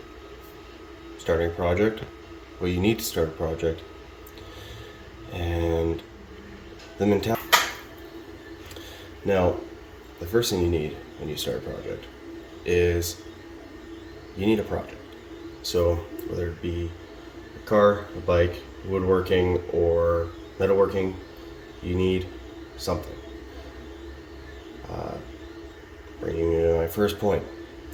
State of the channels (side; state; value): both; identical; correlation 1.00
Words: starting a project, what you need to start a project, and the mentality. Now, the first thing you need when you start a project is you need a project. So whether it be a car, a bike, woodworking, or metalworking, you need something. Bringing me to my first point,